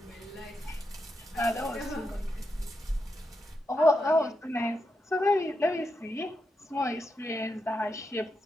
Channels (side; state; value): both; normal; correlation 0.85